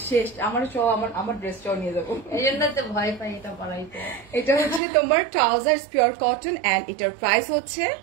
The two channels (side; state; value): left; drops out; at 4.8 s